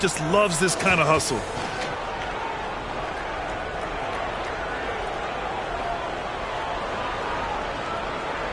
loves this kind of hustle.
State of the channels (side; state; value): both; identical; correlation 1.00